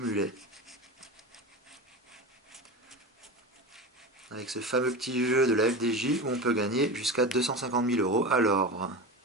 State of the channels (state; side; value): normal; both; correlation 0.26